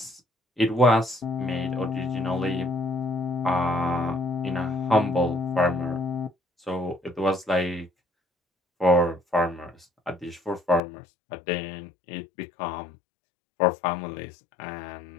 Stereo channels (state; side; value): drops out; right; at 10.8 s